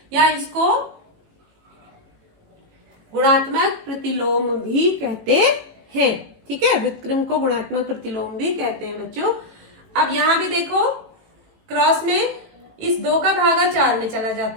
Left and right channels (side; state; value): left; late; 18 ms